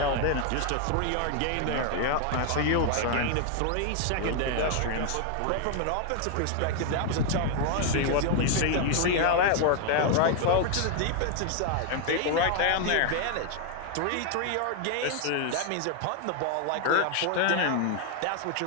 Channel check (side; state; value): both; different; correlation 0.00